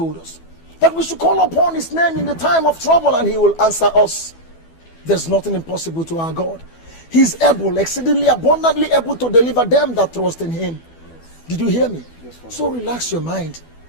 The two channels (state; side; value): late; right; 12 ms